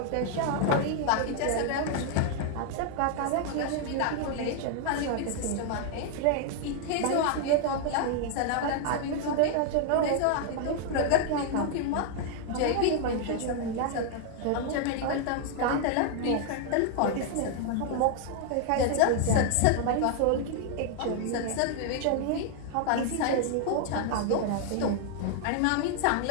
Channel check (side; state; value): both; different; correlation 0.00